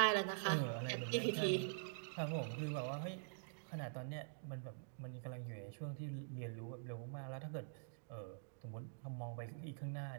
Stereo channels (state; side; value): silent; left; digital silence